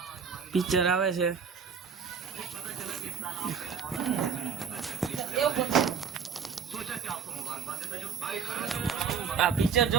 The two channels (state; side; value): quieter; left; 6.6 dB